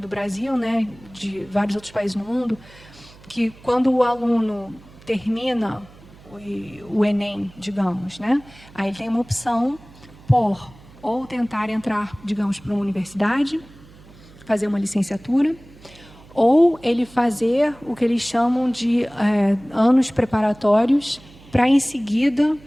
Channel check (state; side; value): noise; right; hum, 23 dB below the sound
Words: Brasil, né, de vários outros países no mundo, que quando o aluno termina o Enem, digamos, né, aí tem uma opção por ou tentar entrar, digamos, para uma universidade, fazer uma licenciatura, ou ele fazer o que eles chamam de anos preparatórios para, em seguida,